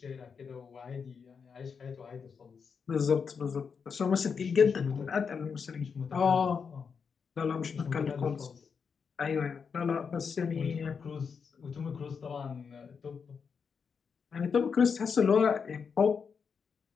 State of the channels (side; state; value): right; quieter; 6.0 dB